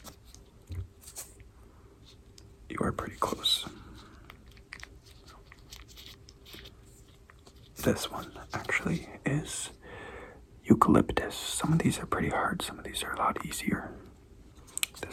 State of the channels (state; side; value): identical; both; correlation 1.00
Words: You are pretty close. This one actually is eucalyptus. Some of these are pretty hard, some of these are a lot easier.